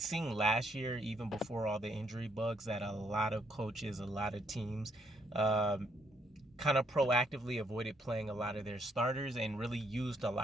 last year, even before all the injury bugs, that a lot of coaches, a lot of teams kind of proactively avoided playing a lot of their starters and really used a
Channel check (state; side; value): normal; both; correlation 0.71